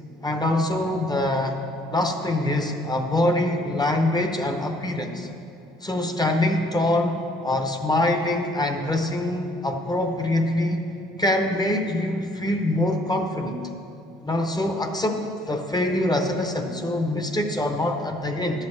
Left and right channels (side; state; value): both; normal; correlation 0.63